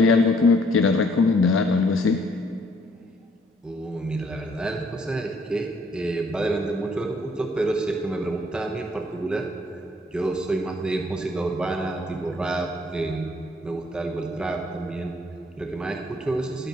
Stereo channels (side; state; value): both; normal; correlation 0.64